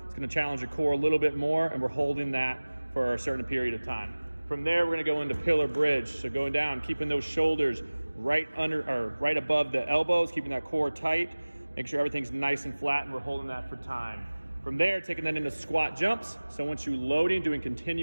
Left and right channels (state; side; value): inverted; both; correlation -1.00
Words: it's gonna challenge your core a little bit more, and we're holding that for a certain period of time. From there, we're gonna go into pillar bridge. So going down, keeping those shoulders right under or right above the elbows, keeping that core tight, make sure everything's nice and flat, and we're holding that for time. From there, taking that into squat jumps. So once you loading, doing